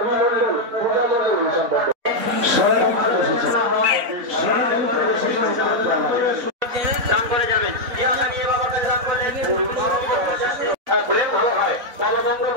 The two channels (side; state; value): left; late; 3.9 ms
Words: দান করে যাবেন ভালো হয় বাবা মঙ্গল